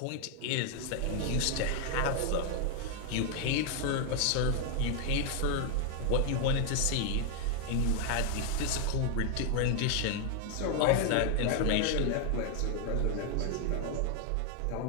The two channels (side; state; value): both; different; correlation 0.00